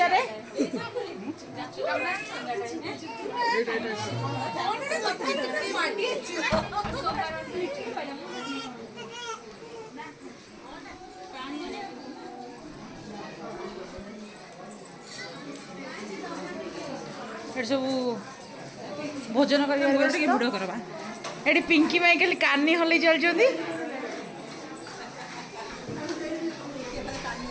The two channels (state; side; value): identical; both; correlation 1.00